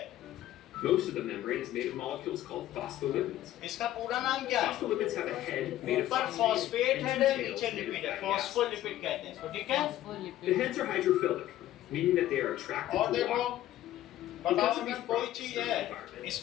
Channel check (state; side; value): quieter; right; 13.6 dB